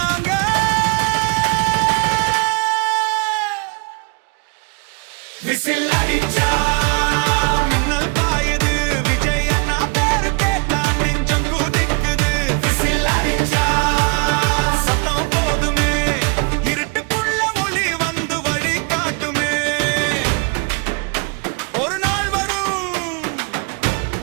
விசில் அடிச்சா மின்னல் பாயுது விஜய் அண்ணா பேரு கேட்டா நெஞ்சம் குதிக்குது விசில் அடிச்சா சத்தம் போதுமே இருட்டுக்குள்ள ஒளி வந்து வழி காட்டுமே ஒரு நாள் வரும்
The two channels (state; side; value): quieter; left; 33.2 dB